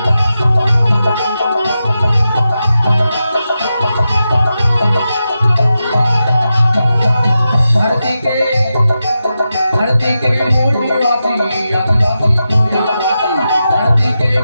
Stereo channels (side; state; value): both; inverted; correlation -0.90